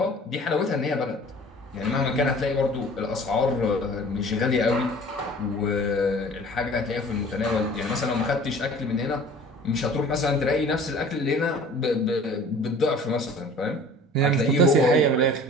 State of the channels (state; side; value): normal; both; correlation 0.46